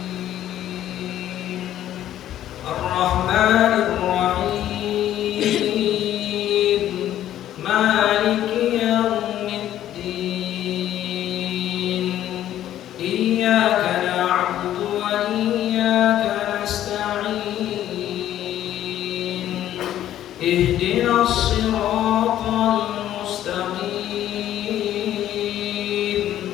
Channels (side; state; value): right; quieter; 12.1 dB